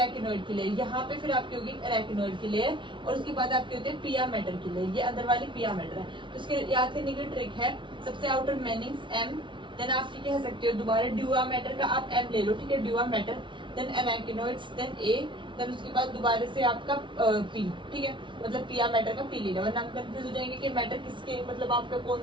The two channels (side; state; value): left; late; 0.24 ms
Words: की लेयर, यहाँ पे फिर आपकी होगी एराकिनोइड की लेयर, और उसके बाद आपके होते हैं पिया मैटर की लेयर, ये अंदर वाली पिया मैटर है। तो इसके याद करने की ट्रिक है, सबसे आउटर मेनिंग्स एम, देन आप कह सकते हो दोबारा ड्यूरा मैटर का आप एम ले लो। ठीक है, ड्यूरा मैटर, देन एराकिनोइड्स, देन ए, देन उसके बाद दोबारा से आपका पी। ठीक है, मतलब पिया मैटर का पी लेना, वरना आप कंफ्यूज हो जाएंगे कि मैटर किसके, मतलब आपका